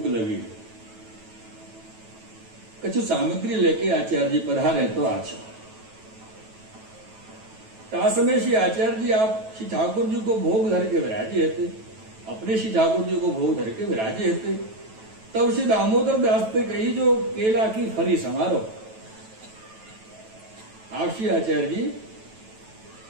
लगी है, कछु सामग्री लेके आचार्य जी पधारे तो अच्छा। समय श्री आचार्य जी आप श्री ठाकुर जी को भोग धर के विराजे थे, अपने श्री ठाकुर जी को भोग धर के विराजे थे। तब श्री दामोदर दास ने कही जो केला की फली समारो। आप श्री आचार्य जी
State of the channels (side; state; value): left; late; 9.2 ms